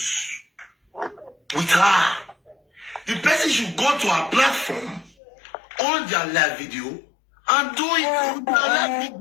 with her, the person should go to her platform on their live video and do it on their live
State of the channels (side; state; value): right; drops out; at 5.1 s